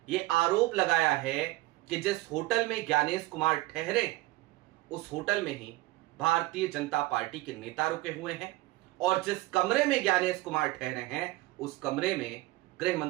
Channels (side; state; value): left; quieter; 18.9 dB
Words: यह आरोप लगाया है कि जिस होटल में ज्ञानेश कुमार ठहरे, उस होटल में ही भारतीय जनता पार्टी के नेता रुके हुए हैं, और जिस कमरे में ज्ञानेश कुमार ठहरे हैं, उस कमरे में गृह